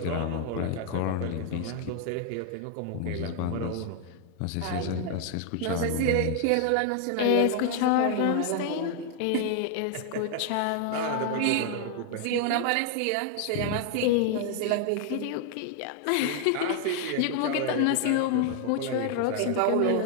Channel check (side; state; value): both; different; correlation 0.00